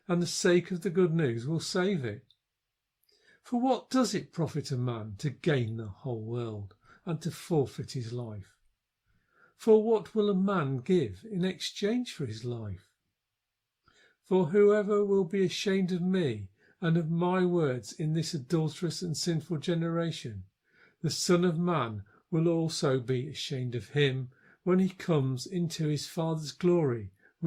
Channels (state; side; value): identical; both; correlation 1.00